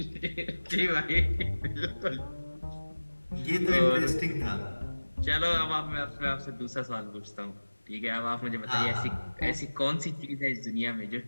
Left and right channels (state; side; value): inverted; both; correlation -1.00